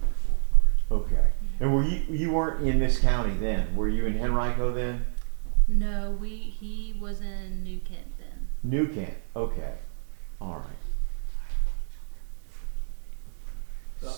or fourth grade. Okay. And were you weren't in this county then? Were you in Henrico then? No, he was in New Kent then. New Kent. Okay. All right.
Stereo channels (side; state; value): left; silent; 60 dB below the other